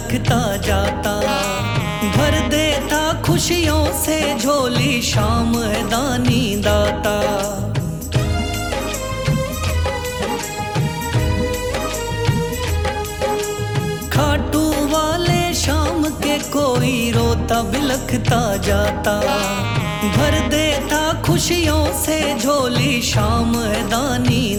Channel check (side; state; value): both; identical; correlation 1.00